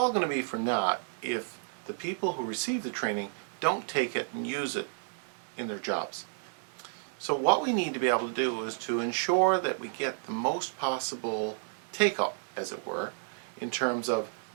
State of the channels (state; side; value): silent; left; digital silence